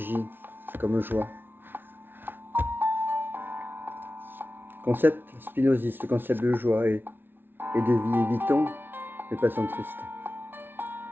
comme joie. Concept spinoziste, concept de joie et de vie. Évitons les passions tristes.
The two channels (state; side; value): late; left; 0.10 ms